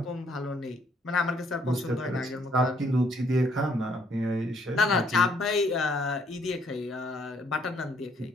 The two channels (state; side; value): normal; both; correlation 0.67